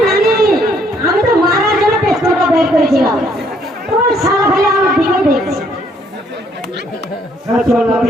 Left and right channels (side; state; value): both; normal; correlation 0.67